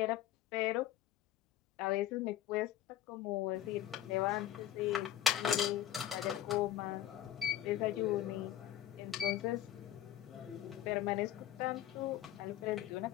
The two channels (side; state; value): right; quieter; 11.8 dB